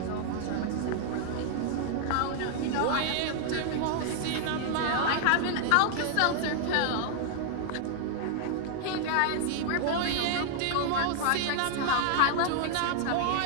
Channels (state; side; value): different; both; correlation 0.00